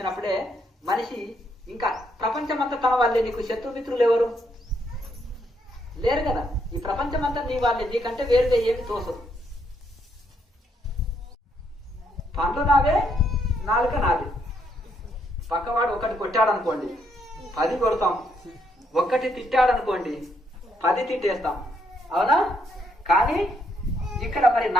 మనిషి ఇంకా ప్రపంచం అంతా తన వాళ్ళే. నీకు శత్రుమిత్రులు ఎవరు లేరు కదా, ఈ ప్రపంచం అంతా నీ వాళ్ళే, నీకంటే వేరుగా ఏమి తోసదు. పండ్లు నావే, నాలుక నాది. పక్కవాడు ఒకటి కొట్టాడనుకోండి 10 కొడతాం, ఒక్కటి తిట్టాడనుకోండి 10 తిట్టేస్తాం, అవునా? కానీ ఇక్కడ మరి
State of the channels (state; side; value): normal; both; correlation 0.74